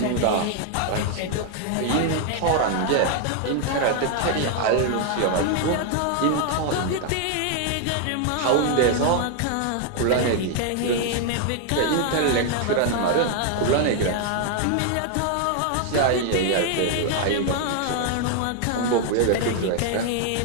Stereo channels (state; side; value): different; both; correlation 0.00